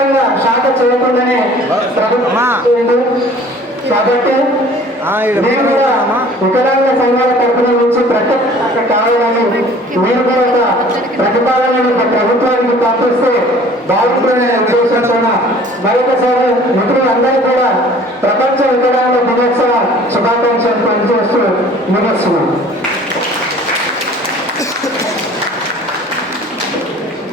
శాఖ చేయకుండానే ప్రభుత్వం. కాబట్టి మేము కూడా వికలాంగ సంఘాల తరఫున నుంచి ప్రత్యేక కావాలని మీరు కూడా ఒక ప్రతిపాదనను ప్రభుత్వానికి పంపిస్తే బాగుంటుందనే ఉద్దేశంతో మరొకసారి మిత్రులందరూ కూడా ప్రపంచ వికలాంగ దినోత్సవ శుభాకాంక్షలు పనిచేస్తూ ముగిస్తున్నాం.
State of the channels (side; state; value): both; normal; correlation 0.50